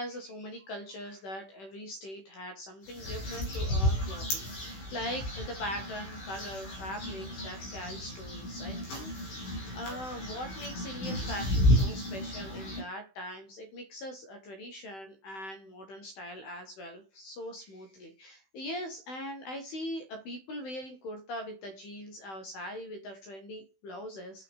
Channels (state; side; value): late; right; 16 ms